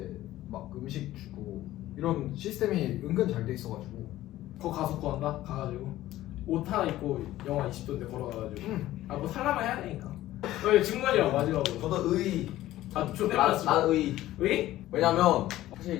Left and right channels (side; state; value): right; quieter; 15.0 dB